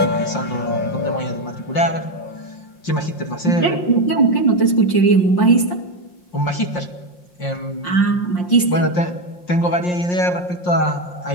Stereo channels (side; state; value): right; late; 5.6 ms